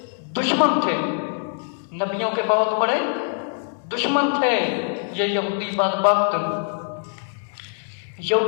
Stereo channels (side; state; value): right; silent; 63 dB below the other